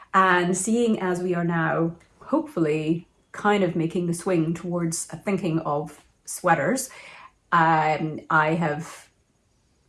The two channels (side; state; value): both; identical; correlation 1.00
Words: And seeing as we are now hopefully kind of making the swing towards thinking of sweaters, I have